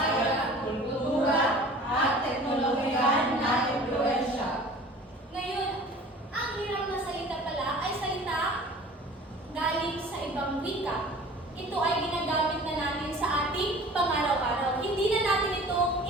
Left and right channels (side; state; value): both; normal; correlation 0.44